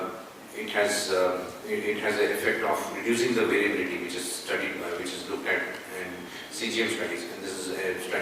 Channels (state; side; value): identical; both; correlation 1.00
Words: it has an effect of reducing the variability, which is studied, which is looked at in CGM studies. And this is a